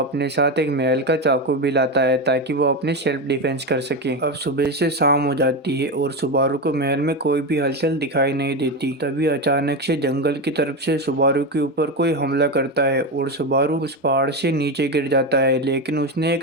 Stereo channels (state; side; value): normal; both; correlation 0.15